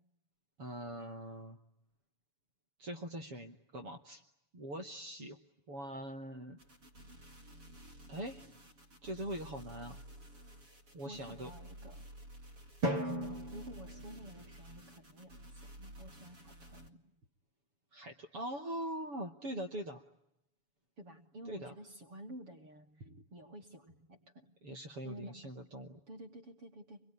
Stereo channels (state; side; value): late; left; 7.1 ms